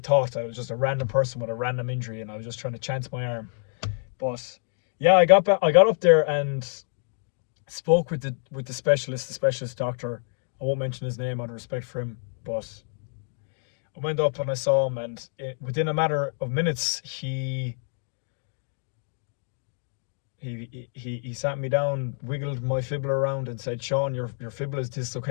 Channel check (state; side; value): silent; right; 60 dB below the other